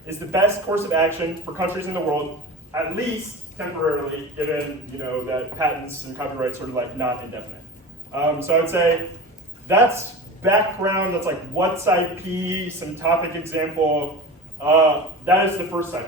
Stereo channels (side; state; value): both; normal; correlation 0.32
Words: is the best course of action for countries in the world, at least temporarily, given that patents and copyrights are not indefinite. So I would say that's background. That's what's IP, some topic example. That is the first